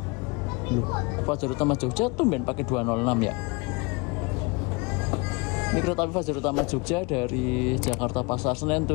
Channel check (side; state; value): right; quieter; 28.2 dB